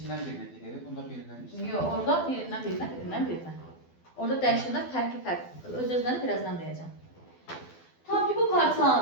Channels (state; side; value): late; right; 12 ms